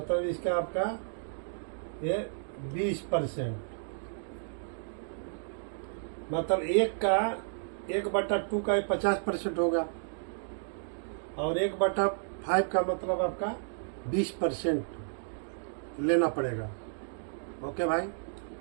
इसका आपका ये 20%, मतलब 1/2 का 50% होगा, और 1/5 का मतलब आपका 20% लेना पड़ेगा। ओके भाई,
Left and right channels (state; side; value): silent; left; digital silence